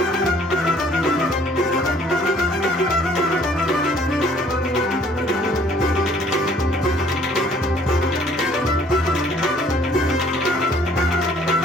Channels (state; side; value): normal; both; correlation 0.59